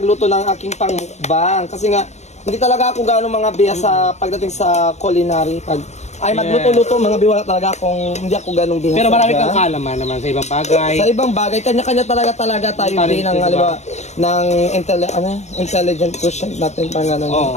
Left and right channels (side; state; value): right; late; 0.33 ms